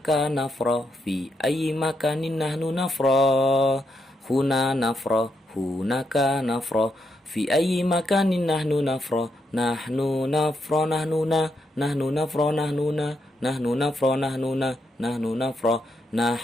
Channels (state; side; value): normal; both; correlation 0.80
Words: nafra, fi ayyi makanin nahnu nafra. Huna nafra, hunaka nafra, fi ayyi makanin nahnu nafra. Nahnu nafra nahnuna, nahnu nafra nahnuna, nahnu nafra nahnuna, nahnu nafra,